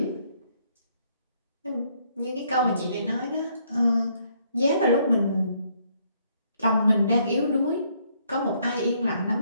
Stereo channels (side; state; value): both; inverted; correlation -0.69